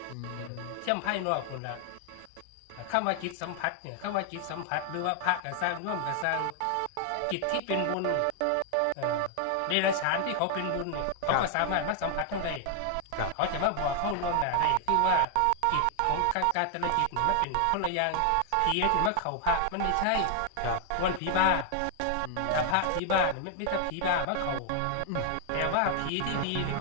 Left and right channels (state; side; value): different; both; correlation 0.00